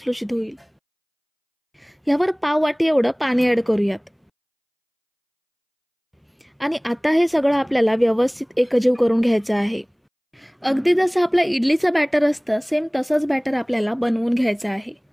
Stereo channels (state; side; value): identical; both; correlation 1.00